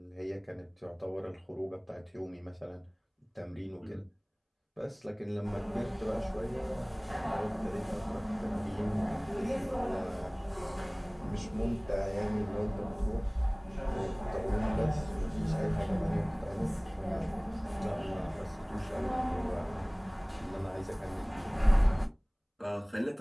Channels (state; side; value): identical; both; correlation 1.00